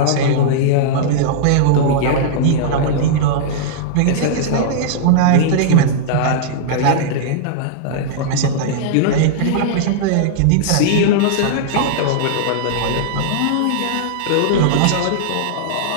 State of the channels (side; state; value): both; different; correlation -0.02